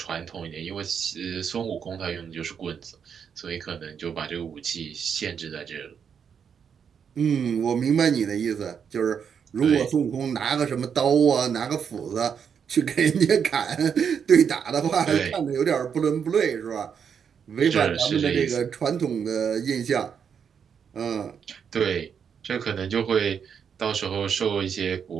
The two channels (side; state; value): left; quieter; 7.2 dB